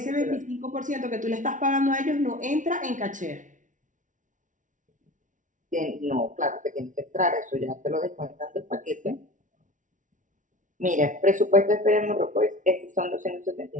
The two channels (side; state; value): left; late; 0.37 ms